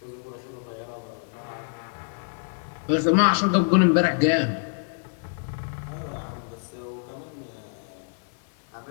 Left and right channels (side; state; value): right; silent; 60 dB below the other